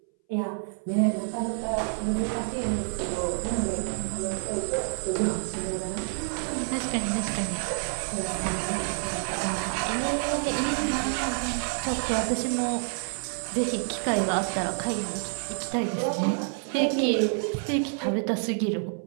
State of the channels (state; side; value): silent; left; 59 dB below the other